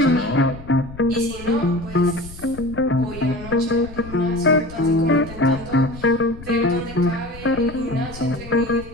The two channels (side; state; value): left; noise; rumble, 15 dB below the sound